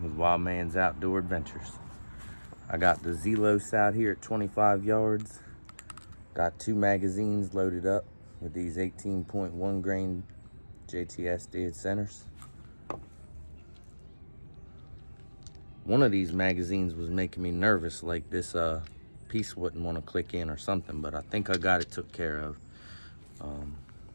with Wild Man's Outdoor Adventures. I got the Zelos out here at 25 yards. Got 2 magazines loaded up with these 18.1 grain JTS dead centers. One of these magazines was making me nervous, like this piece wouldn't want to click in or something, but I think I got it took care of.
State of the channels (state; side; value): inverted; both; correlation -1.00